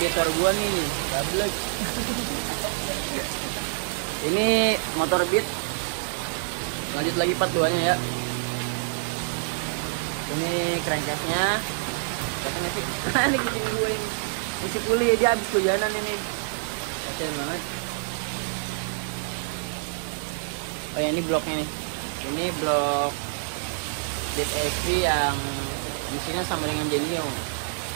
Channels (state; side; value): silent; left; digital silence